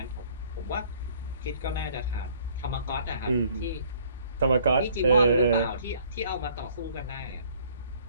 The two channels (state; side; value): inverted; both; correlation -0.59